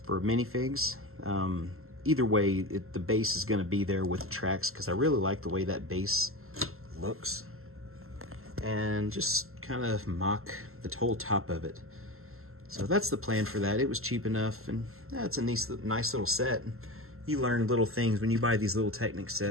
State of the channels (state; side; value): late; left; 0.62 ms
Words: for minifigs. Either way, the base is going to be there with the tracks because I really like the way that base looks. And just kind of mock the whole top of it. So that's the plan for that. It was cheap enough, and it's a nice little set. You learn little things when you buy these little Technic